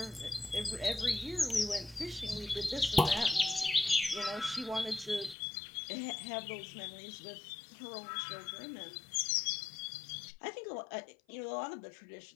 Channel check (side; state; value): right; drops out; at 5.4 s